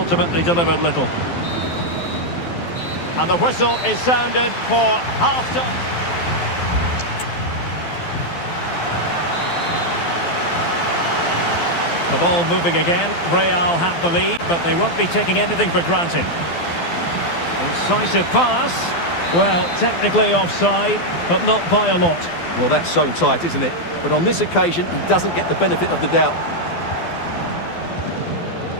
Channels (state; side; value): late; right; 12 ms